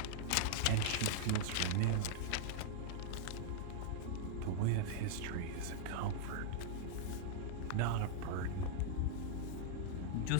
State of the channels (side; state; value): both; different; correlation -0.01